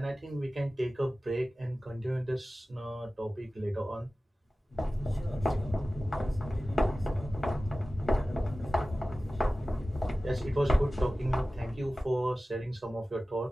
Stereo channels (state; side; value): normal; both; correlation 0.96